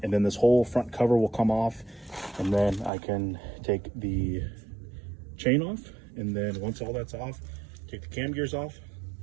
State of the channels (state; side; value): drops out; left; at 2.9 s